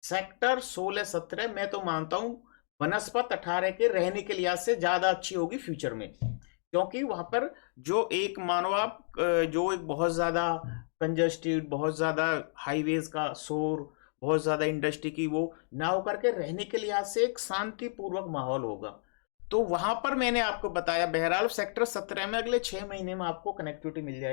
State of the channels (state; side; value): silent; right; digital silence